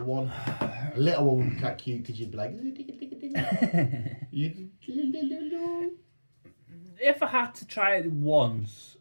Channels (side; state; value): both; inverted; correlation -1.00